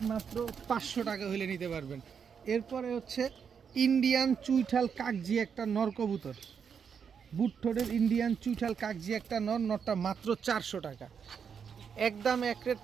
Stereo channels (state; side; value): quieter; left; 6.9 dB